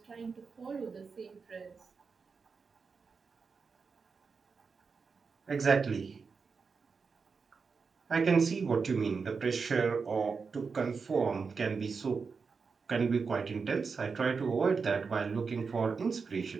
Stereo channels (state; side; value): quieter; left; 5.1 dB